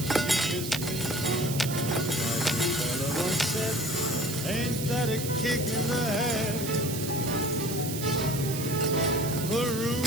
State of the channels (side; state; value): right; noise; hiss, 7 dB below the sound